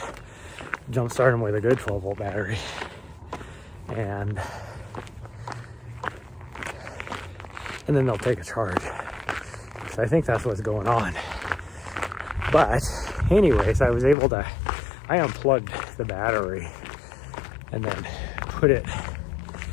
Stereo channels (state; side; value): drops out; right; at 14.2 s